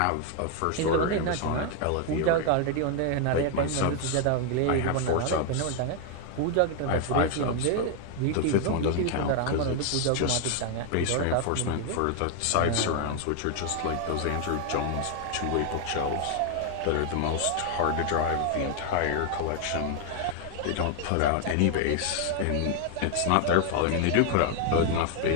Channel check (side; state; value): both; different; correlation 0.00